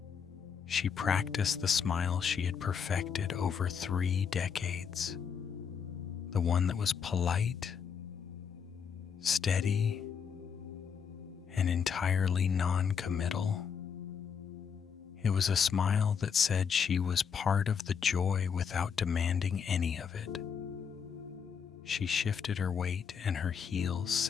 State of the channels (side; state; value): right; quieter; 6.9 dB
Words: She practiced the smile she had perfected over 3 decades. The one that was polite, steady, and entirely non-committal. It was a smile that said she was part of the joy without demanding any of it. She shifted her weight and her heels